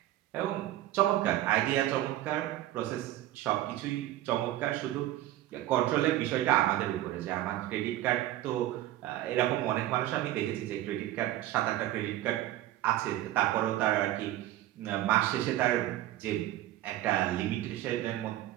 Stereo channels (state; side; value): quieter; left; 14.4 dB